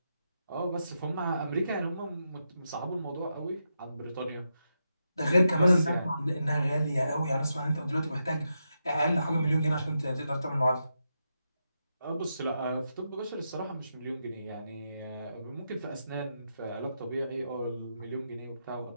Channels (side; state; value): both; inverted; correlation -0.85